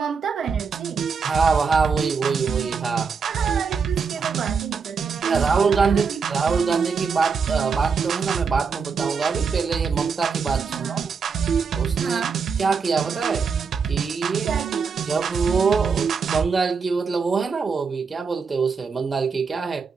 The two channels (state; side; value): quieter; left; 5.5 dB